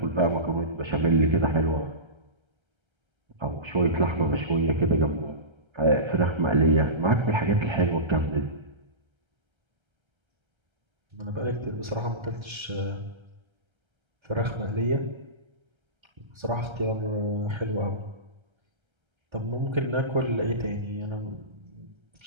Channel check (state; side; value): late; left; 1.3 ms